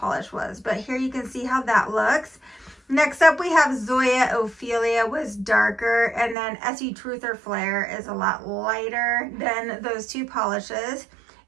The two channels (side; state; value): left; drops out; at 6.4 s